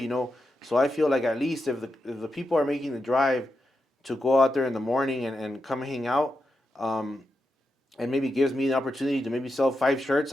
So I feel like at least if the people are making the drive to go out there in the morning and come hang out, and maybe gives me the opportunity to maybe sell 5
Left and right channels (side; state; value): both; normal; correlation 0.87